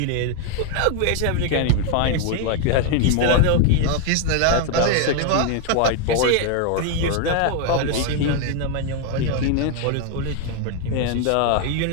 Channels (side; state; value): both; different; correlation 0.01